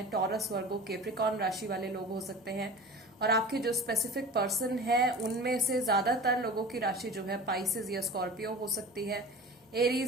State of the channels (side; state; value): both; normal; correlation 0.36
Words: टॉरस वर्गो कैप्रिकॉर्न राशि वाले लोग हो सकते हैं। और आपके जो स्पेसिफिक पर्सन है उनमें से ज्यादातर लोगों की राशि जो है पाइसेस या स्कॉर्पियो हो सकती है।